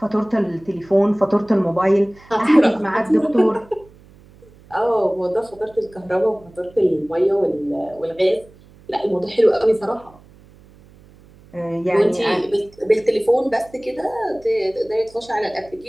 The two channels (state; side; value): noise; right; hum, 25 dB below the sound